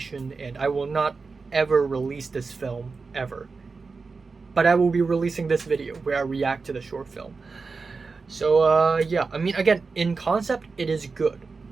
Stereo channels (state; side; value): quieter; left; 4.4 dB